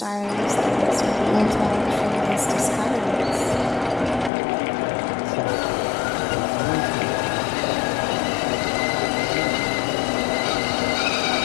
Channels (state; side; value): drops out; right; at 4.3 s